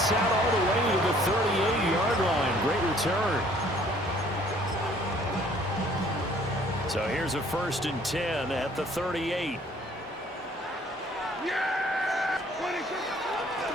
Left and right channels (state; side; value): normal; both; correlation 0.58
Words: out all the way to the 38-yard line. Great return. So here's a 1st and 10 at the 38.